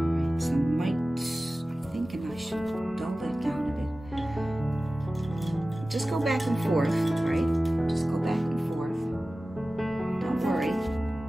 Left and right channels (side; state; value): both; normal; correlation 0.96